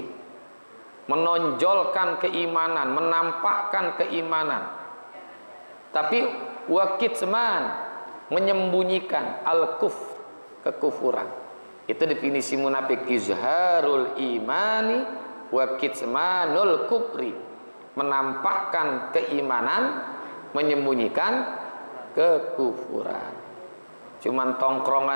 Menonjolkan keimanan, menampakkan keimanan. Tapi wa kitman, menyembunyikan al-kufr, kekufuran. Itu definisi munafik, izharul imani wa kitmanul kufri. Menampakkan keimanan, menyembunyikan kekufuran. Cuman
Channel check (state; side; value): inverted; both; correlation -1.00